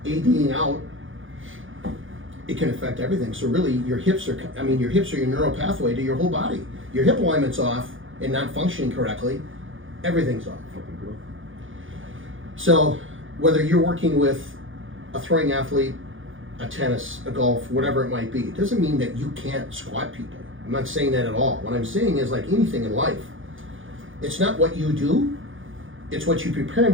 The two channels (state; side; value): late; left; 0.58 ms